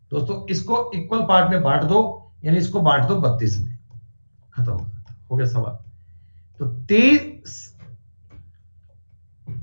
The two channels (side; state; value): both; inverted; correlation -1.00